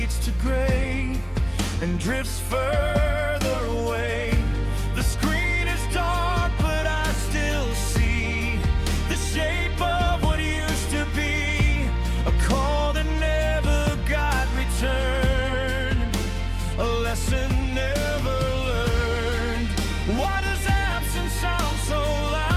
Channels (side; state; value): both; identical; correlation 1.00